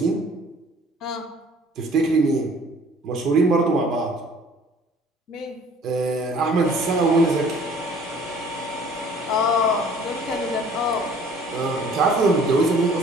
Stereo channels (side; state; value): both; normal; correlation 0.53